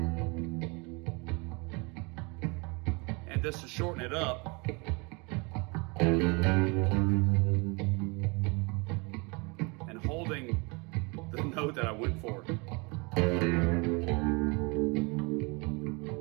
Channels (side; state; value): left; quieter; 29.3 dB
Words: and just to shorten it up, and holding the note that I went for.